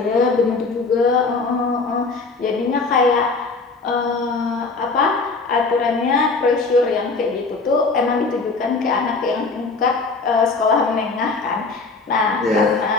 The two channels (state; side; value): quieter; right; 4.0 dB